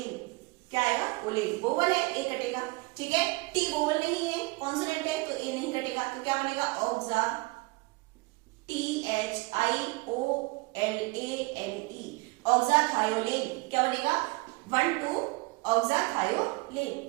क्या आएगा? ओलेन। वोवल है, ए कटेगा, ठीक है। टी वोवल नहीं है, कॉन्सोनेंट है, तो ए नहीं कटेगा, तो क्या बनेगा? ऑक्सा, THIOLANE, ऑक्साथायोलेन। क्या बनेगा? 1 2 ऑक्साथायोलेन।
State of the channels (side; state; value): left; quieter; 24.8 dB